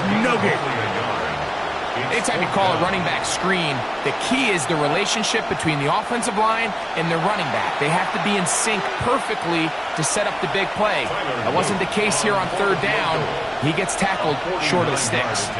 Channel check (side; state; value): both; identical; correlation 1.00